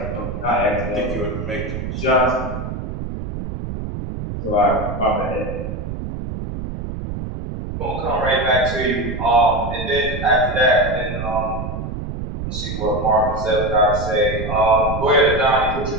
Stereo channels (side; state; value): right; noise; rumble, 6 dB below the sound